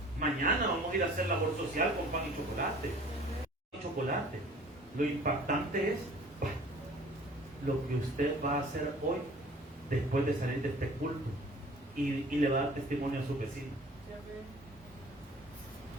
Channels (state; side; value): normal; both; correlation 0.48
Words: Mañana vamos a ir a hacer labor social con pan y chocolate. Lo impactante es lo que usted va a hacer hoy después de salir de este culto y le va a dar testimonio a su vecino.